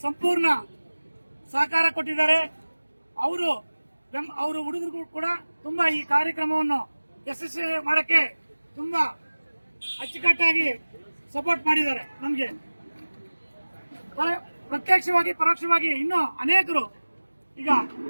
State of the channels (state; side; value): inverted; both; correlation -1.00